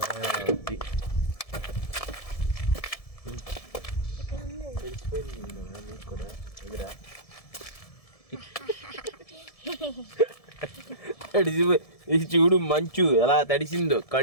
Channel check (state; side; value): late; right; 1.7 ms